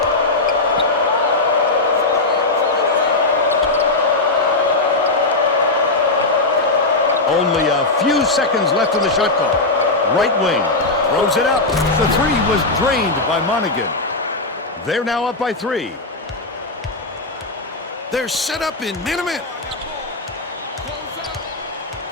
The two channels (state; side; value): quieter; right; 3.1 dB